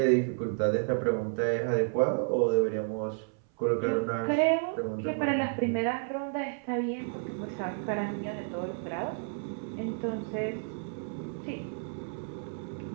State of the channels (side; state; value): left; silent; 57 dB below the other